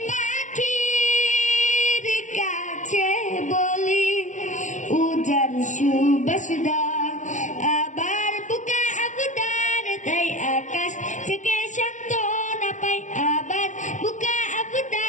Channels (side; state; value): right; late; 0.36 ms